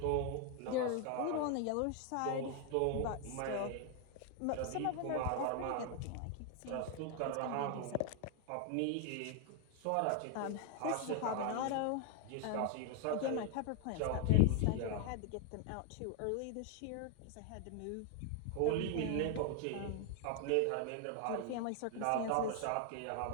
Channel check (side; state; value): both; different; correlation 0.01